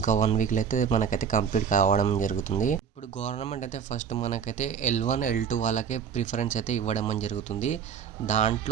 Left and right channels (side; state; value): left; quieter; 7.4 dB